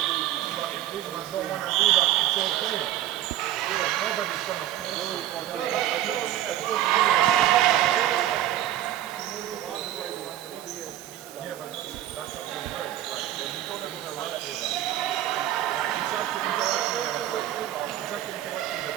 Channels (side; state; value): left; quieter; 12.7 dB